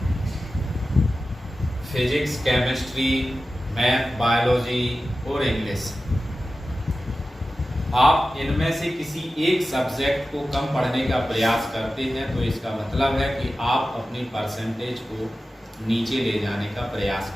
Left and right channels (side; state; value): both; normal; correlation 0.94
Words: फिजिक्स, केमिस्ट्री, मैथ, बायोलॉजी और इंग्लिश आप इनमें से किसी एक सब्जेक्ट को कम पढ़ने का प्रयास करते हैं तो इसका मतलब है कि आप अपनी परसेंटेज को नीचे ले जाने का प्रयास